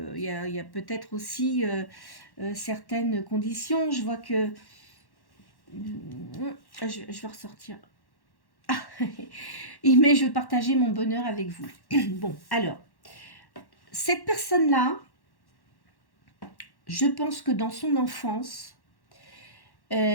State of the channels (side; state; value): right; late; 1.1 ms